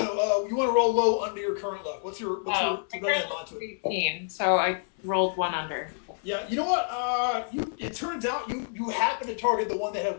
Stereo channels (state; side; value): silent; right; 59 dB below the other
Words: want to roll low under your current luck. What's your My mod current to it? 18, so I rolled 1 under. Yeah, you know what? It turns out you happen to target the one that had